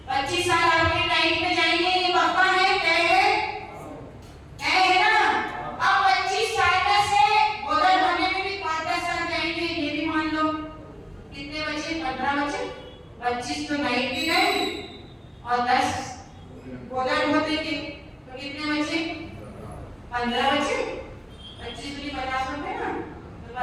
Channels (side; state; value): both; identical; correlation 1.00